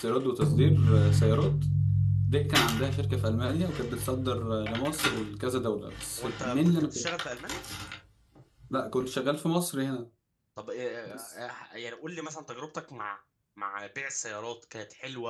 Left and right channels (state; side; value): identical; both; correlation 1.00